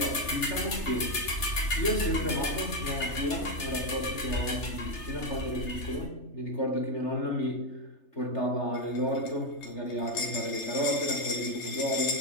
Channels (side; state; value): right; late; 3.3 ms